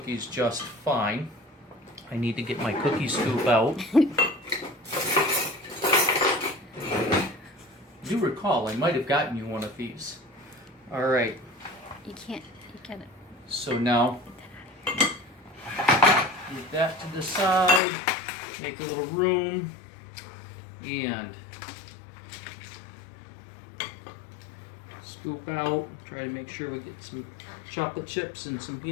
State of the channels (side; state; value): right; drops out; at 17.8 s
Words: just fine. I need to get my cookie scoop out. Do recall, I might have gotten you one of these. Alright. You can't. So now, move that to the side, make a little room, and scoop out. Try to make sure we get some chocolate chips and some